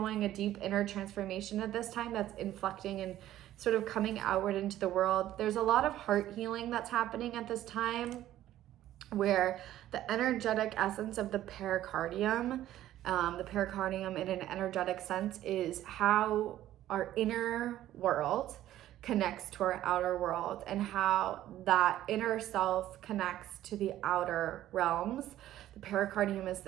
a deep inner transformation at this time that's inflecting and sort of coming outward into the world. There's a lot of heart healing that's happening at this time, where the energetic essence of the pericardium in an energetic sense is how our inner world connects to our outer world, and how that inner self connects to the outer realms. The pericardium is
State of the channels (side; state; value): left; quieter; 13.3 dB